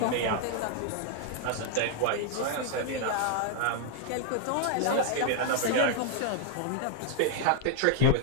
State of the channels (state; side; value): different; both; correlation 0.00